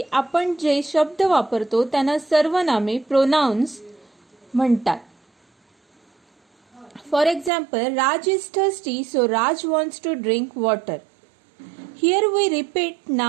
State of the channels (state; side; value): drops out; left; at 7.5 s